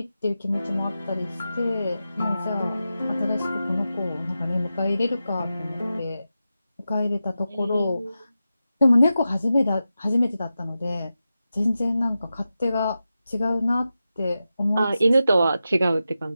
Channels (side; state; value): both; inverted; correlation -0.91